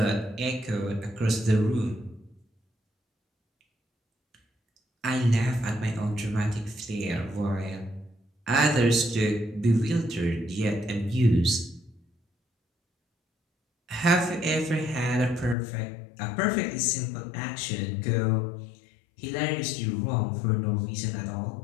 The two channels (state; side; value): drops out; right; at 15.6 s